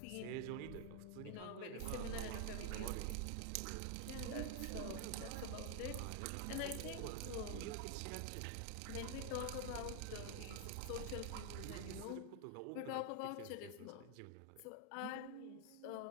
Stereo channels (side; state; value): both; different; correlation 0.00